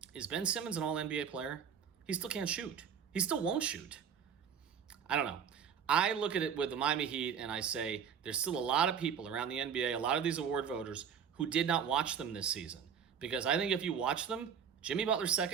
Is Ben Simmons an All-NBA player? He still can't shoot. He still won't shoot. I don't know. I look at it with the Miami Heat and I say there's still a lot of people around the NBA, a lot of these award voters, who did not watch them this season. Because I think if you watch them, Jimmy Butler's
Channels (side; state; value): left; quieter; 7.5 dB